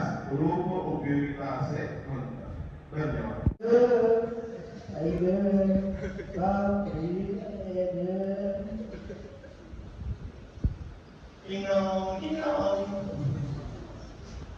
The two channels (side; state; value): both; identical; correlation 1.00